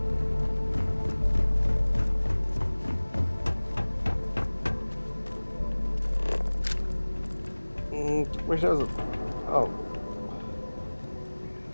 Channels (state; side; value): inverted; both; correlation -1.00